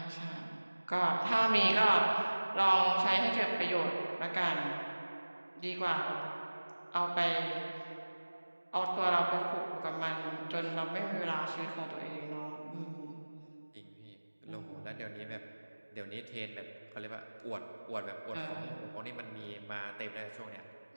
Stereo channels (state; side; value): inverted; both; correlation -1.00